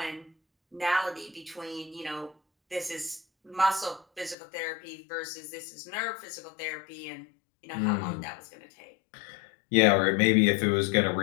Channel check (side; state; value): right; drops out; at 4.4 s